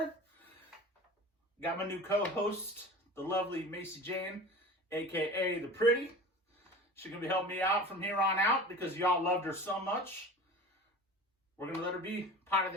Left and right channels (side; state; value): both; normal; correlation 0.36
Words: Got my new co-host, the lovely Macy Jane, a.k.a. The Pretty. She's going to be helping me out from here on out because y'all loved her so much. We're going to let her be part of